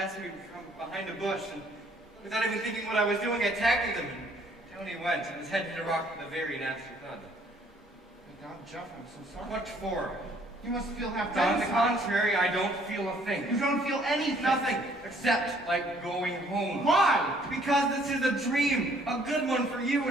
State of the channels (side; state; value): both; normal; correlation 0.62